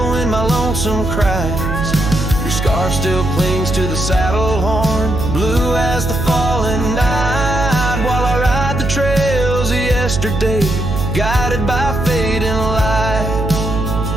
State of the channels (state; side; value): noise; right; hum, 3 dB below the sound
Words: my lonesome cries. Your scarf still clings to the saddle horn, blue as the falling night, while I ride the trails of yesterday, guided by fading light.